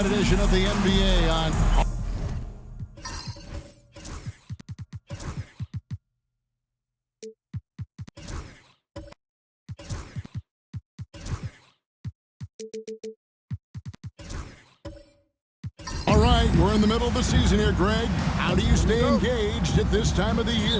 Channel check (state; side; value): identical; both; correlation 1.00